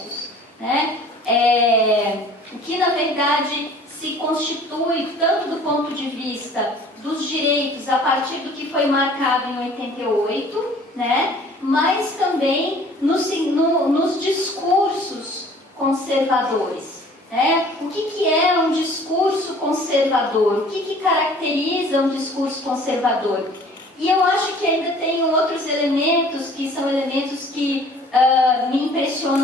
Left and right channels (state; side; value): normal; both; correlation 0.51